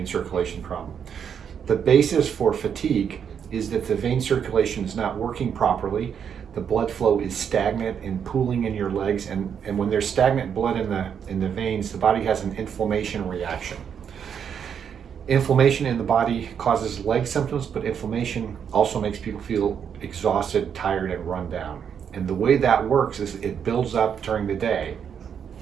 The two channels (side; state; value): left; quieter; 7.8 dB